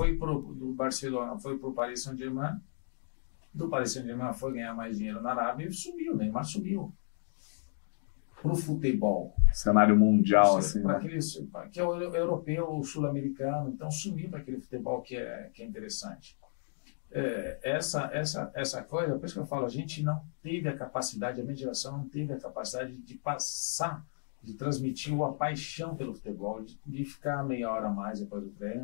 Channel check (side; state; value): right; silent; digital silence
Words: do Barcelona, foi pro Paris Saint-Germain. Do Paris Saint-Germain foi ganhar mais dinheiro na Arábia e sumiu, Neymar sumiu. Pro futebol. Cenário mundial, assim. Para que é o europeu, o sul-americano, então sumiu para aquele futebol que é interessante. Essa coisa, por isso que eu falo, a gente não teve a capacidade, a minha geração não teve a capacidade de passar, de transmitir a paixão pelo futebol, de ficar meia hora a mais depois do